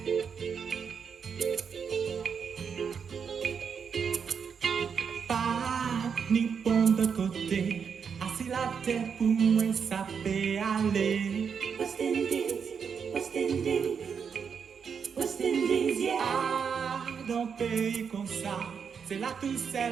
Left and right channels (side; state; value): left; quieter; 6.6 dB